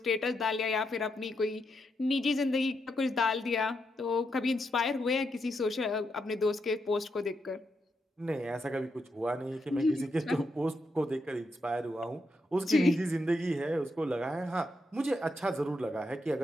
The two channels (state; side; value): normal; both; correlation 0.82